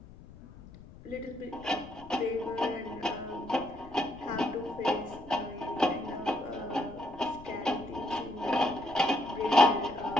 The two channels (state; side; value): noise; left; rumble, 19 dB below the sound